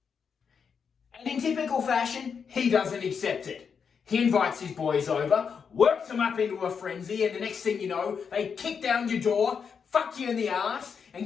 And in typical fashion, he doesn't accept it. He invites his boys over, works them up into a frenzy, and the next thing you know, they kick down your door, fuck you in the ass, and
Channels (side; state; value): right; quieter; 6.4 dB